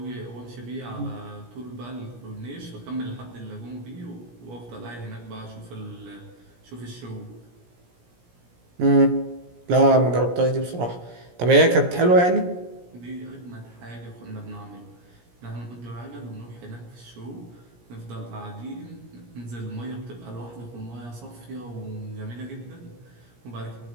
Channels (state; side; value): late; left; 17 ms